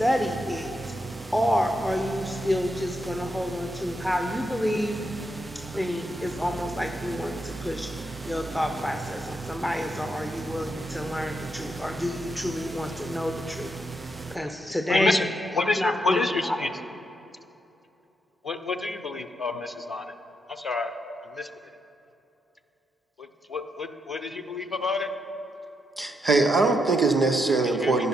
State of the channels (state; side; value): normal; both; correlation 0.81